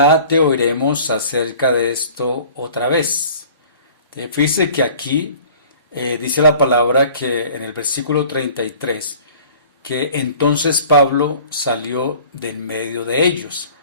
te oiremos acerca de esto otra vez. Fíjese que aquí dice la palabra que en el versículo 33, que entonces Pablo salió de en medio de ellos.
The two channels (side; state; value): both; inverted; correlation -0.48